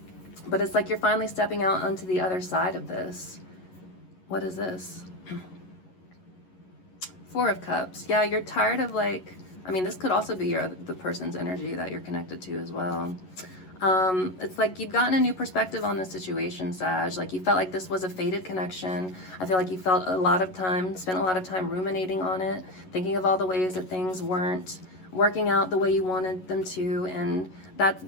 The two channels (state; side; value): late; right; 11 ms